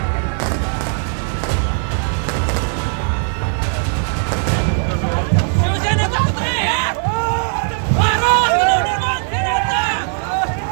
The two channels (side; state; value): left; silent; 59 dB below the other